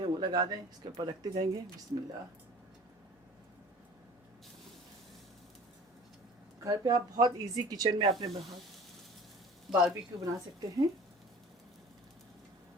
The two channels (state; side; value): normal; both; correlation 0.44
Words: हैं वो लगा दें, इसके ऊपर रखते जाएंगे। बिस्मिल्लाह। घर पे आप बहुत इजी किचन में अपने बारबेक्यू बना सकते हैं,